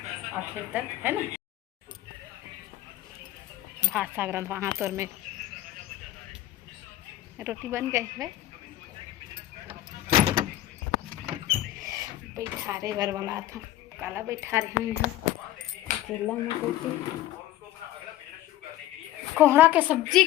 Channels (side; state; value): right; quieter; 14.1 dB